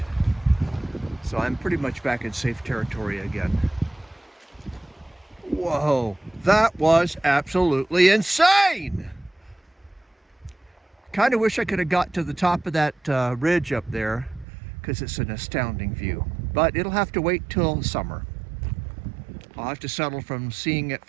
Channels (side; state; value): left; drops out; at 14.5 s